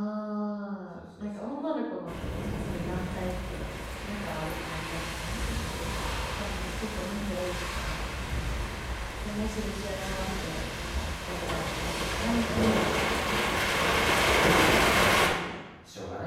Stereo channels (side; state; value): both; identical; correlation 1.00